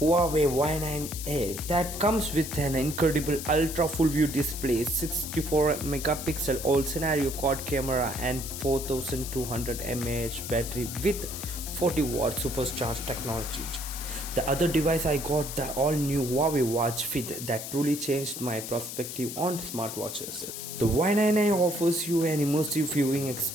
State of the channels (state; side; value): noise; left; hiss, 8 dB below the sound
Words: Y9A that comes with an incredible ultra full view display, 64 megapixel all scenario quad camera and 4200 mAh battery with 40 watt supercharged technology. The other device I got the all new Huawei Watch Fit that truly changed my perspective on smartwatches. The Y9A offers you an immersive viewing